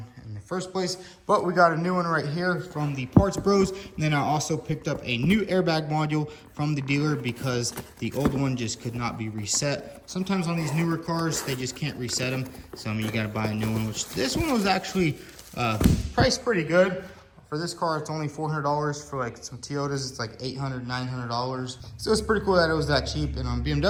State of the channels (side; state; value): both; identical; correlation 1.00